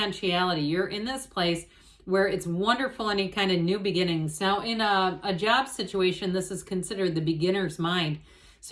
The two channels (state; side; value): identical; both; correlation 1.00